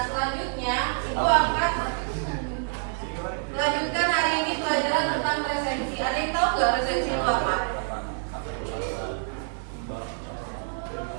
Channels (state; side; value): silent; left; digital silence